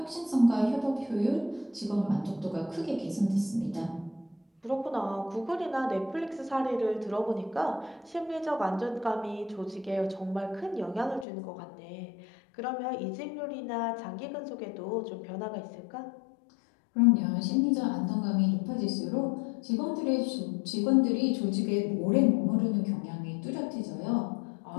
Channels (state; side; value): drops out; right; at 11.2 s